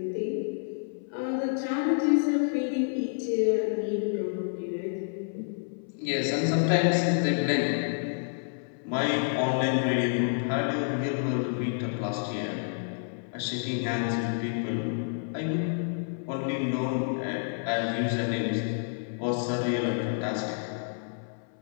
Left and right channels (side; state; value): right; silent; 59 dB below the other